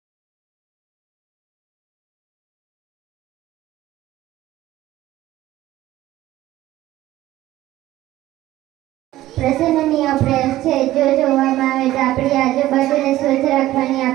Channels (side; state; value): left; quieter; 15.3 dB